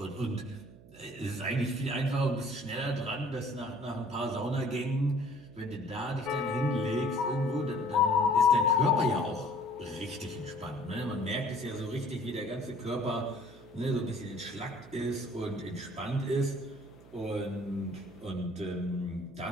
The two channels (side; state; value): right; noise; hum, 21 dB below the sound